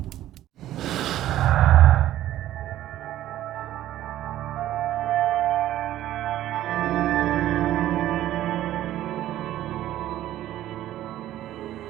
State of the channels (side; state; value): left; quieter; 13.4 dB